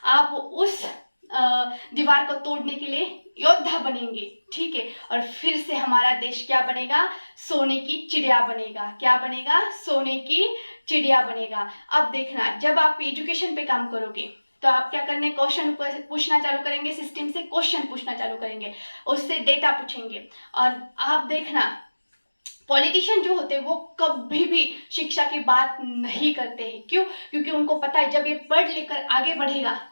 आप उस दीवार को तोड़ने के लिए योद्धा बनेंगे, ठीक है। और फिर से हमारा देश क्या बनेगा, सोने की चिड़िया बनेगा। क्या बनेगा, सोने की चिड़िया बनेगा। अब देखना, जब आप एजुकेशन पे काम करोगे तो आप क्या करने, क्वेश्चन पूछना चालू करेंगे, सिस्टम से क्वेश्चन पूछना चालू करेंगे, उससे डेटा पूछेंगे। और आप देखना, पॉलिटिशियन जो होते हैं वो कभी भी शिक्षा की बात नहीं करते हैं। क्यों, क्योंकि उनको पता है जब ये पढ़ लिख कर आगे बढ़ेगा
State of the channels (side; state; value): both; inverted; correlation -1.00